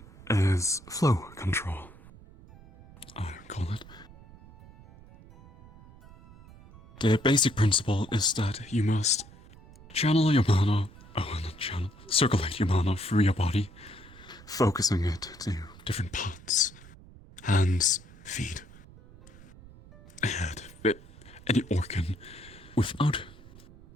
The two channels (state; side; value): noise; right; rumble, 21 dB below the sound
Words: is flow control, I call it. The basic principle is that you must channel your mana, not channel, circulate your mana through your body, focusing it to different parts, hands, feet, head, any organ, without